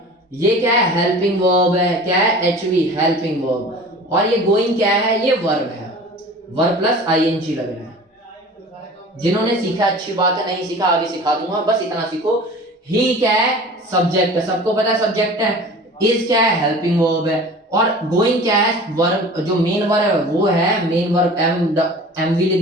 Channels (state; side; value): normal; both; correlation 0.41